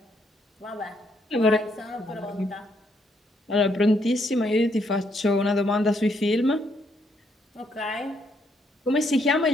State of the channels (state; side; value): normal; both; correlation 0.74